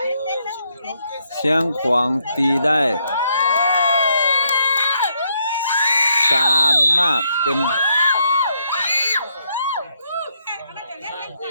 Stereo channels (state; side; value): inverted; both; correlation -0.75